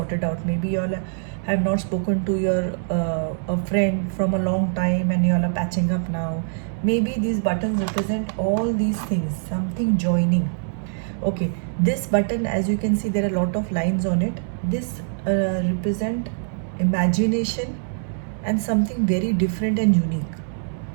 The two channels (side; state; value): left; silent; 63 dB below the other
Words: out. Maybe you all have not spoken to your a friend from a long time and you all are patching up now. Maybe these buttons represent all these things, something joining. Okay, this button, as you can see, there are a lot of lines on it. This represent imagination and something very different and unique.